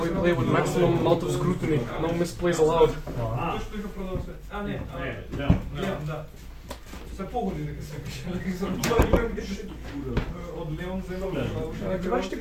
we play with maximum amount of scrutiny. No misplays allowed. Се погоди дека се пише. Од Леон земја. Гледаш ти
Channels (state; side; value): identical; both; correlation 1.00